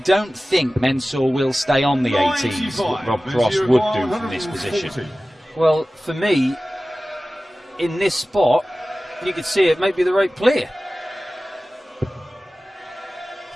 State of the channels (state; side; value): normal; both; correlation 0.96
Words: think Mensur will stay on the 18s, what Rob Cross would do from this position. Well, for me, in this spot, you could see it might be the right play.